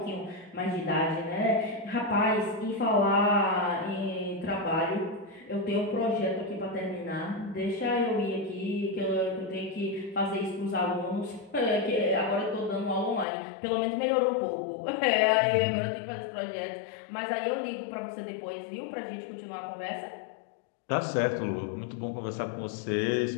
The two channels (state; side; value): drops out; right; at 13.2 s